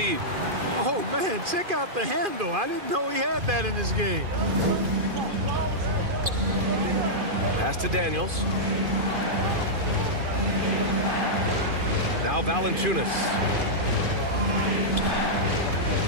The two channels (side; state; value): left; late; 2.5 ms